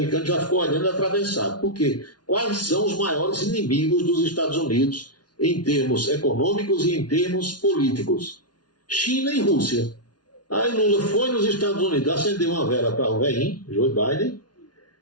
já ficou olhando atravessado. Por quê? Quais são os maiores inimigos dos Estados Unidos em termos econômicos e em termos políticos? China e Rússia. Aí Lula foi nos Estados Unidos, acendeu uma vela para o velhinho, Joe Biden,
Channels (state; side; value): late; right; 0.69 ms